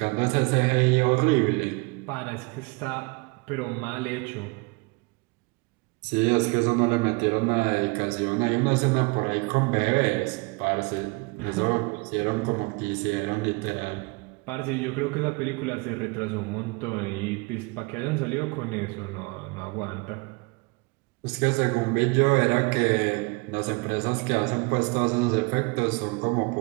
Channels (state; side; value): quieter; left; 27.7 dB